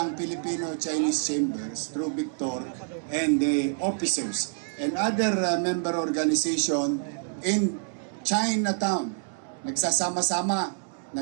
Filipino-Chinese Chambers through Victor and the officers and other member organization in Chinatown. Nagsasama-sama,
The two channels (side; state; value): left; silent; 60 dB below the other